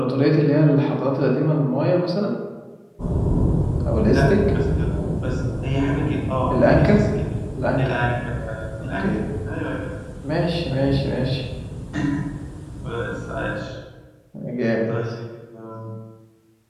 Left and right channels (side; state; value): both; identical; correlation 1.00